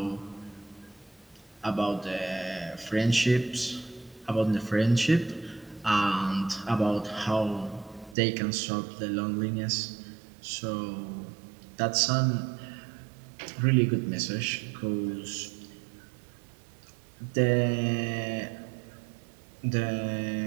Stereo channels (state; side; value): drops out; left; at 8.2 s